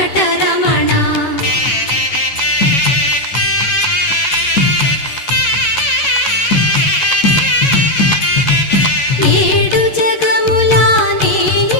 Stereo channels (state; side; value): late; right; 11 ms